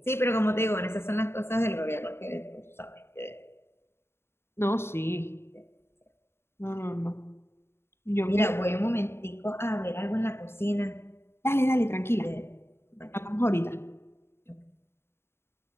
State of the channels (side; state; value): right; late; 0.12 ms